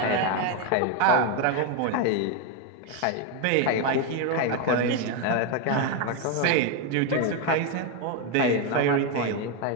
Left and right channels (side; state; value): both; different; correlation 0.02